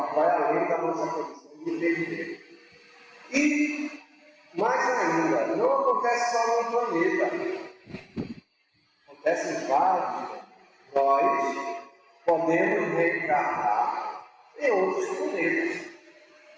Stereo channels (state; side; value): identical; both; correlation 1.00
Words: que vai além da nossa condição de entender. E, mais ainda, não acontece só no planeta. Acontece em vários. Nós podemos reencarnar em outros planetas.